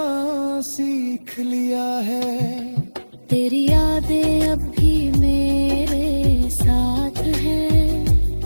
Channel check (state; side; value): inverted; both; correlation -1.00